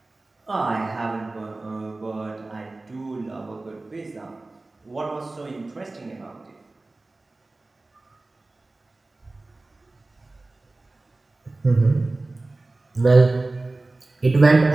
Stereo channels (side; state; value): left; quieter; 3.1 dB